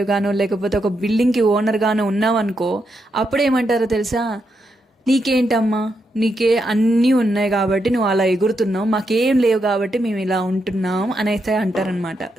గానో లేకపోతే ఒక బిల్డింగ్కి ఓనర్ గానో ఉన్నావనుకో, అప్పుడేమంటారో తెలుసా? నీకేంటమ్మా, నీకే అన్నీ ఉన్నాయి కాబట్టి నువ్వు అలా ఎగురుతున్నావు, మాకేం లేవు కాబట్టి మేము ఇలా ఉంటున్నాం అనేసి అంటారనమాట.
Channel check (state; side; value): normal; both; correlation 0.82